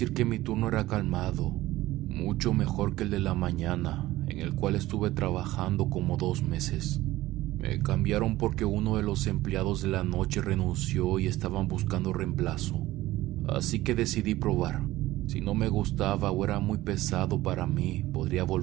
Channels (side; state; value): left; quieter; 16.7 dB